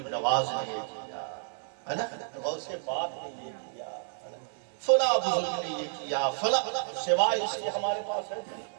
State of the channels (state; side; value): silent; left; 57 dB below the other